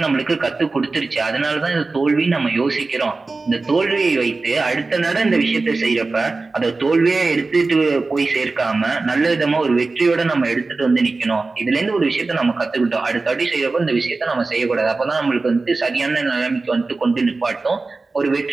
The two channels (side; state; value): left; quieter; 3.7 dB